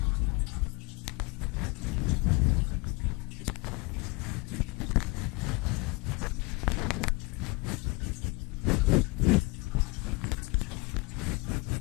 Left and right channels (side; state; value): right; quieter; 26.2 dB